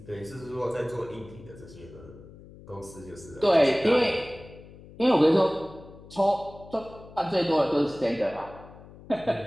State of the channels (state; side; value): noise; left; hum, 19 dB below the sound